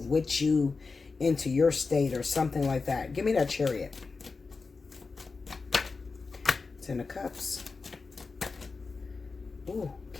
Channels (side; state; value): right; quieter; 4.3 dB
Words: with you into your state or something like that. Give me that Chariot. Ten of Cups. Ooh,